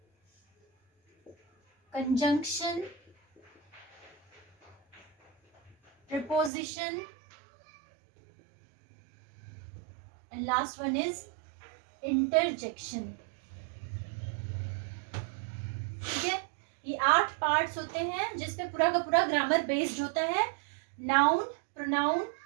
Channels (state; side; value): drops out; left; at 6.5 s